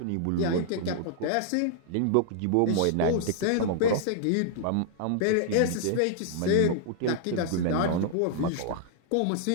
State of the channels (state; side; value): different; both; correlation -0.01